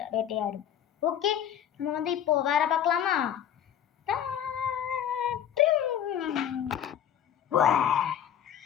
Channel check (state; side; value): quieter; right; 9.7 dB